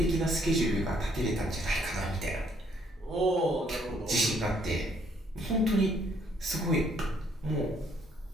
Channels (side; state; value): both; normal; correlation 0.67